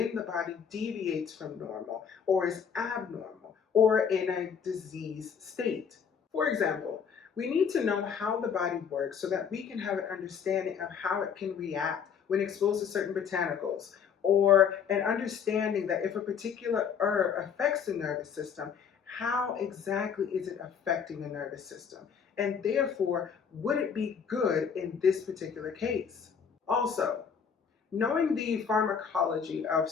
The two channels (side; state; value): right; quieter; 7.0 dB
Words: the body deviates from normal or is abnormal or in a disease state. For example, we need to know how the body works so that we can have an understanding of how it can react when exposed to certain botanicals, or an understanding that if a particular herb affects the nervous system, how exactly is it affecting the nervous system? And therefore, would it be good in this particular case? Also, knowing the pharmacology of